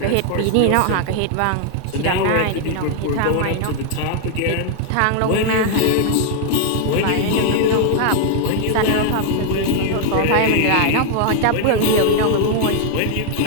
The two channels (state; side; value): different; both; correlation 0.00